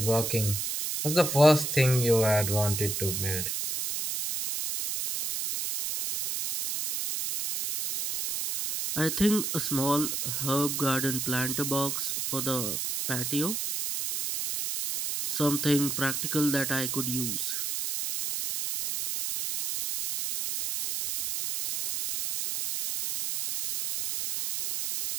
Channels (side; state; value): right; noise; hiss, 2 dB below the sound